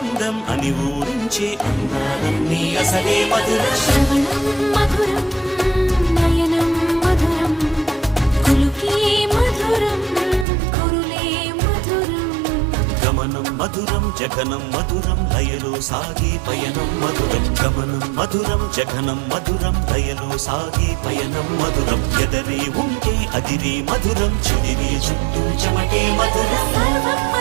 అని ఊరించే అందాలన్నీ అసలే మధురం. శ్రవణం మధురం నయనం మధురం కులుకే మధురం కురులే మధురం. గమనం మధురం జగనం మధురం లయలో సాగే పయనం మధురం. గమనం మధురం జగనం మధురం లయలో సాగే పయనం మధురం. ఎదరే ఉంటే అదిరే మధురం చెదిరే చుట్టూ చెమటే మధురం. సర్వం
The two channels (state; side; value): drops out; left; at 10.5 s